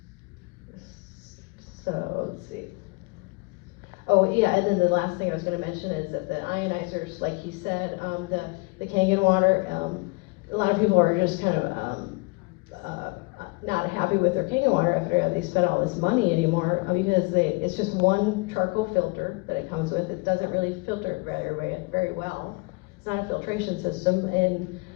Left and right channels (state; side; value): quieter; right; 27.4 dB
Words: let's see. Oh, yeah, and then the last thing I was gonna mention is that the ionizers, like he said, the Kangen water, a lot of people are just kind of, not happy with their Kangen water after they spent all this money anymore, because it's just one charcoal filter that it comes with. It doesn't really filter very well. It's not a filtration system, and